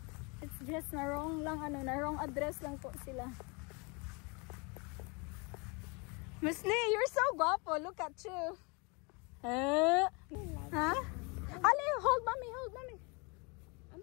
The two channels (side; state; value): right; quieter; 30.6 dB